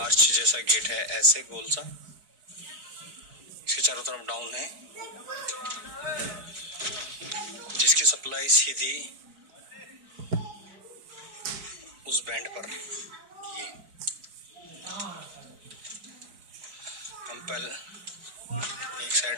जैसा गेट है, ऐसे गोल सा। इसके चारों तरफ डाउन है, जिसकी सप्लाई सीधी उस बैंड पर। ये हम पहले एक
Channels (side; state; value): left; late; 4.6 ms